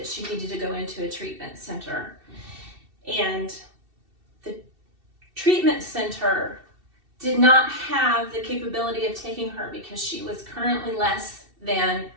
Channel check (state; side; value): late; left; 2.7 ms